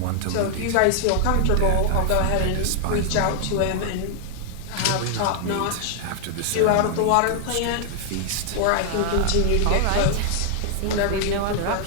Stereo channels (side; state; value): both; different; correlation 0.00